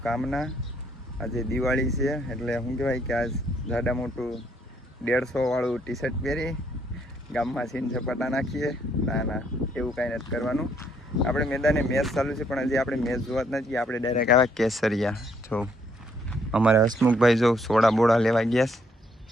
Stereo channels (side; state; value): both; normal; correlation 0.69